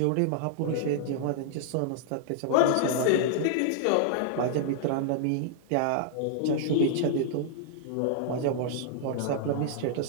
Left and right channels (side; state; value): both; different; correlation -0.01